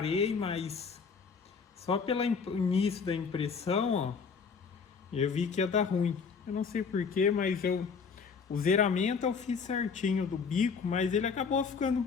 mas só pelo início da impressão, ó, eu vi que ia dar ruim. Eu não sei porquê, mas o zeramento eu fiz certinho do bico, mas ele acabou ficando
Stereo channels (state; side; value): quieter; right; 5.6 dB